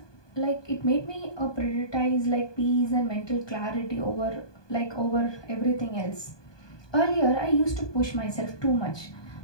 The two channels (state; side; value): late; right; 1.2 ms